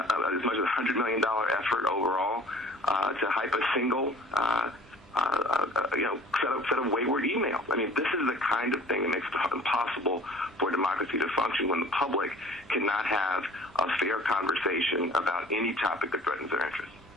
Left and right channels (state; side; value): normal; both; correlation 0.49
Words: much as $100 million effort overall to hype a single set of wayward emails. I mean, this is the kind of thing that makes it impossible for democracy to function when the public cannot have a fair conversation about any topic that threatens their interests.